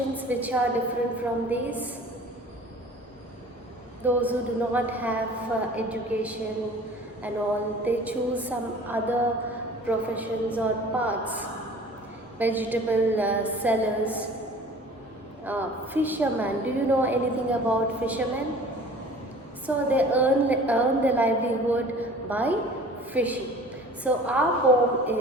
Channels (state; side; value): normal; both; correlation 0.45